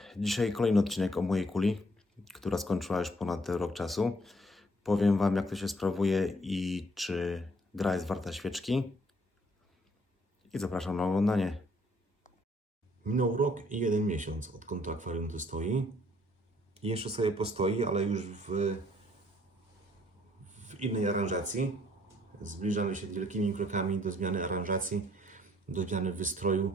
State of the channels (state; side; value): normal; both; correlation 0.64